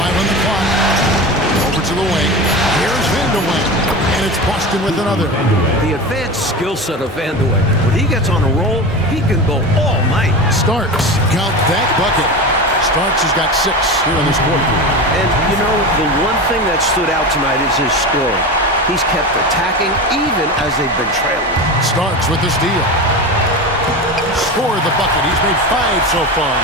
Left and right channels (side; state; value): both; normal; correlation 0.26